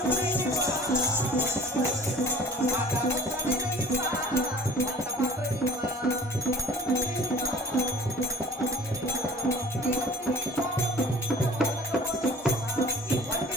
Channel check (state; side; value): normal; both; correlation 0.46